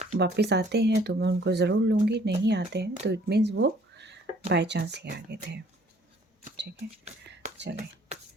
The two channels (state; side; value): normal; both; correlation 0.58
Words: वापस आते हैं तो मैं उनको ज़रूर लूँगी, नहीं आते हैं तो इट मीन्स वो बाय चांस ही आ गए थे। ठीक है, चलें